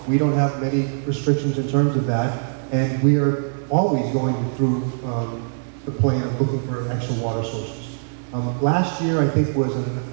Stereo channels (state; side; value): silent; left; digital silence